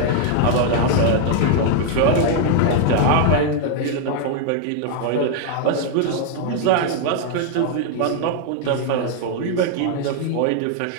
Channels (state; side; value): different; both; correlation 0.00